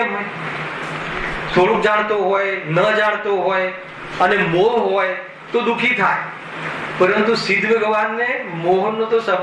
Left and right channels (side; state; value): both; identical; correlation 1.00